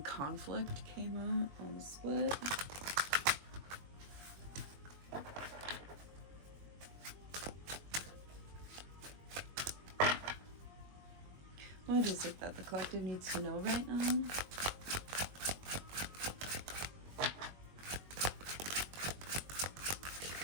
conflict came out on the split. What is it that the collective needs to know right now?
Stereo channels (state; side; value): late; left; 21 ms